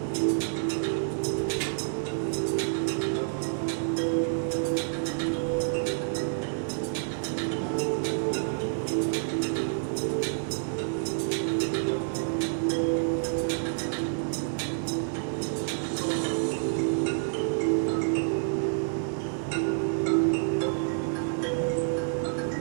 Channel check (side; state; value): left; silent; digital silence